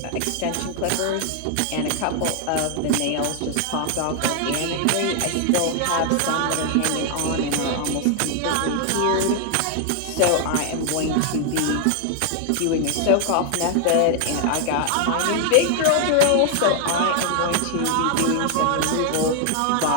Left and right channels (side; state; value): both; different; correlation 0.00